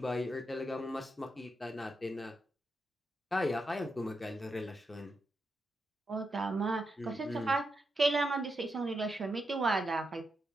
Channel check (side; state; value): both; normal; correlation 0.85